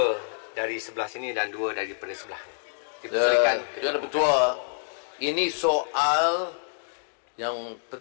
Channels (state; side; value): silent; right; digital silence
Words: dari sebelah sini dan 2 daripada sebelah. Tuan Yang Pertua, ini soal yang